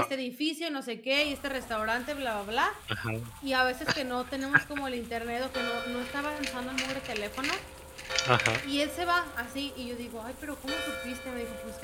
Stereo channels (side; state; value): both; identical; correlation 1.00